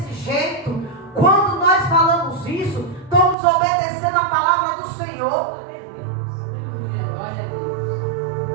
jeito? Quando nós falamos isso, estamos obedecendo a palavra do Senhor.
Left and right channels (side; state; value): left; drops out; at 3.4 s